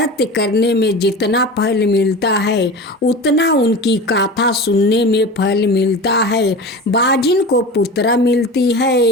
करने में जितना फल मिलता है उतना उनकी गाथा सुनने में फल मिलता है। बाजिन को पुत्र मिलती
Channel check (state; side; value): normal; both; correlation 0.32